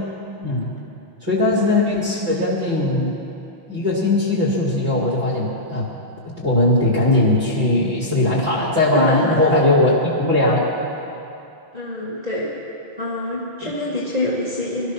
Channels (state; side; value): late; left; 6.0 ms